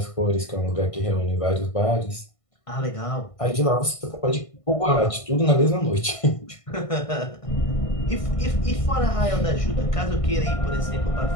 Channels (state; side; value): late; right; 1.6 ms